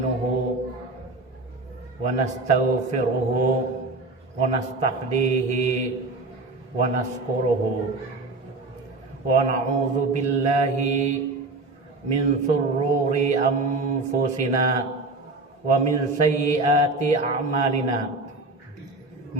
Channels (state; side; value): quieter; left; 3.3 dB